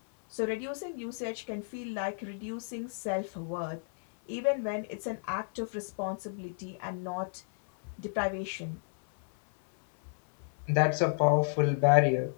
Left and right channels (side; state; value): right; silent; 57 dB below the other